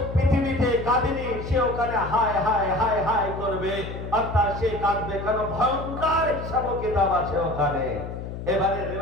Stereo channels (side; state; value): left; noise; hum, 8 dB below the sound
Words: পৃথিবীতে কাঁদেনি সে ওখানে হায় হায় হায় হায় করবে, অর্থাৎ সে কাঁদবে, কারণ ভয়ঙ্কর হিসাব কিতাব আছে ওখানে। এবারে